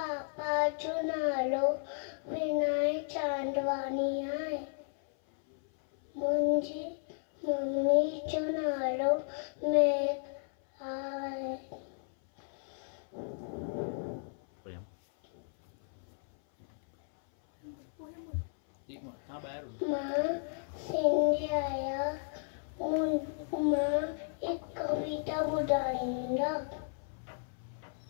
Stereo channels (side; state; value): right; silent; 55 dB below the other